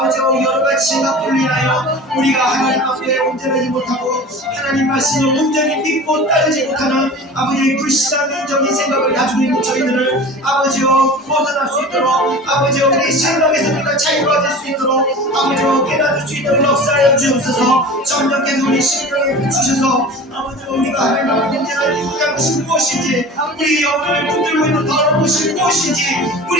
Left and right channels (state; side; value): normal; both; correlation 0.37